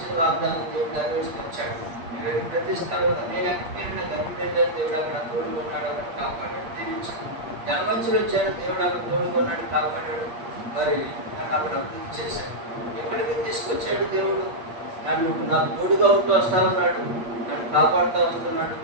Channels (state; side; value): late; left; 8.5 ms